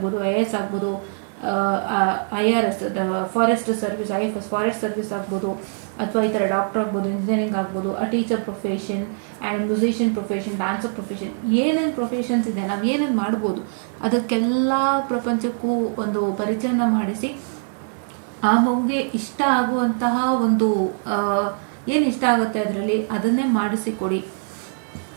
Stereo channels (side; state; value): left; silent; 63 dB below the other